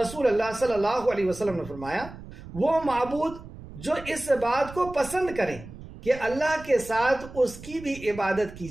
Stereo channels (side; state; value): right; noise; rumble, 15 dB below the sound